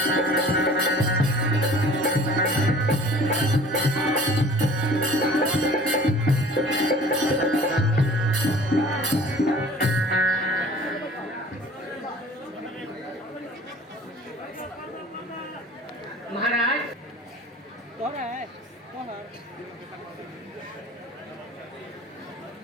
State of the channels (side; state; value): both; normal; correlation 0.47